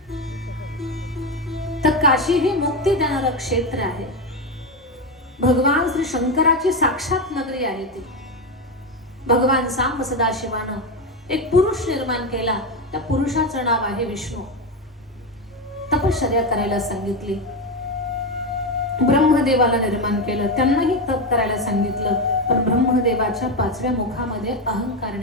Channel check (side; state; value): both; normal; correlation 0.13